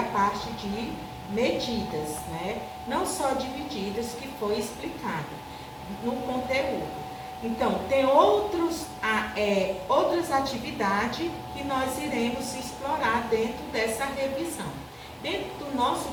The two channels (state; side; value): identical; both; correlation 1.00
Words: parte de medidas, né? Não só de medidas que foi explicado no conteúdo. Então, tem outras atividades que nós iremos explorar dentro dessa revisão, dentro do nosso